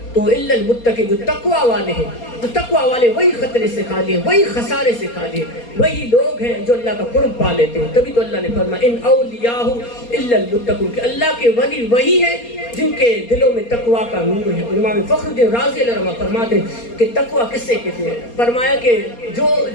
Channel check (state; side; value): late; right; 4.3 ms